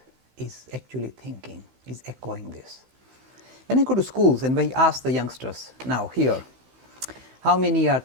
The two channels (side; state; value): left; late; 16 ms